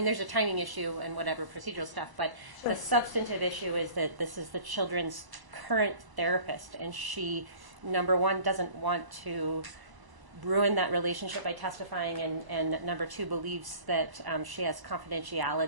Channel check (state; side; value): late; left; 1.0 ms